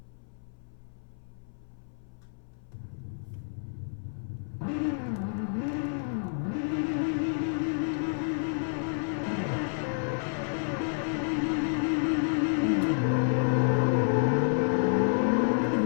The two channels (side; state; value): right; silent; 58 dB below the other